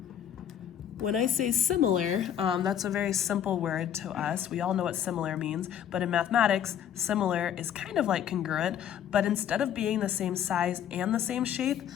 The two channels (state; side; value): quieter; right; 9.7 dB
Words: When I say similar, that's a very simple word to us. We all know what similar means, but in mathematics, similar is kind of like congruent, but instead of being the same size and the same shape,